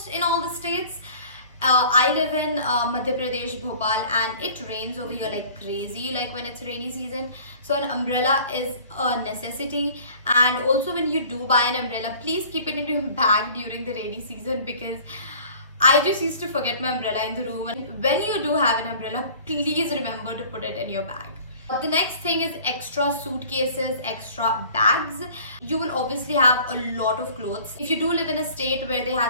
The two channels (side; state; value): both; inverted; correlation -0.48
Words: in all the states. I live in Madhya Pradesh, Bhopal, and it rains over here like crazy, like when it's rainy season. So an umbrella is a necessity. And also, when you do buy an umbrella, please keep it in your bag during the rainy season, because I just used to forget my umbrella in the room. And when you do have an umbrella, please remember to put it in your bag. The next thing is extra suitcases, extra bags. You will obviously have a lot of clothes. If you do live in a state where they